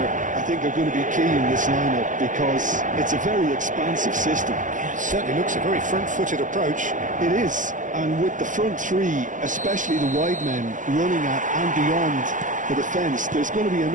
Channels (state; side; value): late; left; 0.37 ms